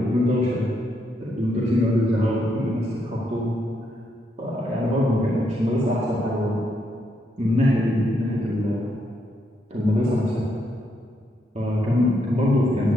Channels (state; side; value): normal; both; correlation 0.77